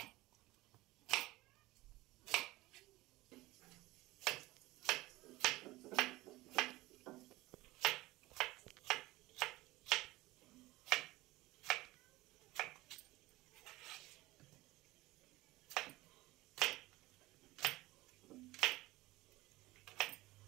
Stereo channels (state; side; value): quieter; left; 19.4 dB